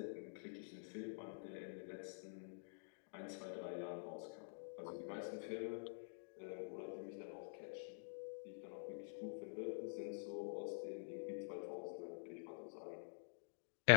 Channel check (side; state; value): right; silent; digital silence